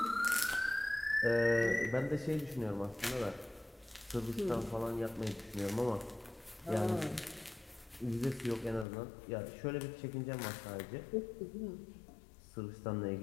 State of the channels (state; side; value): drops out; right; at 8.8 s